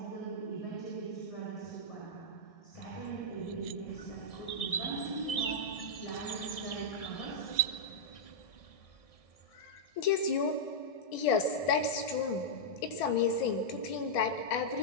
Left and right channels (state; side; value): late; right; 1.6 ms